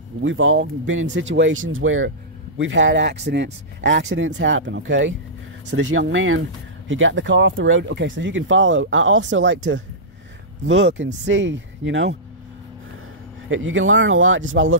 been in situations where we've had accidents. Accidents happen, okay? So this young man, he got the car off the road. Okay, so you can follow. I also like to look and see, you know. You can learn a lot just by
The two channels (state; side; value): normal; both; correlation -0.16